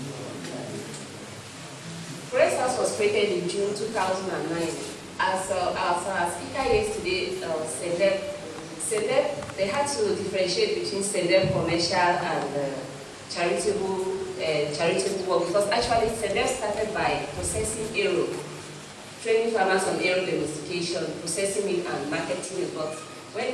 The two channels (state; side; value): identical; both; correlation 1.00